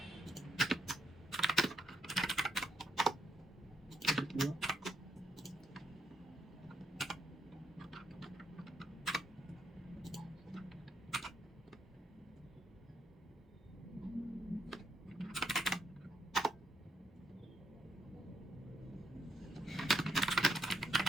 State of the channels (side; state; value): both; normal; correlation 0.78